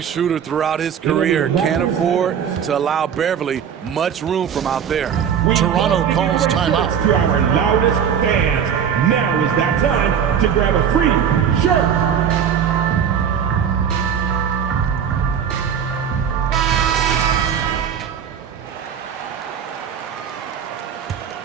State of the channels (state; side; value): quieter; left; 8.0 dB